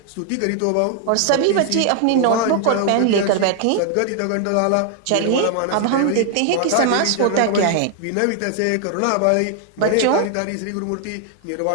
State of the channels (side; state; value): both; different; correlation 0.00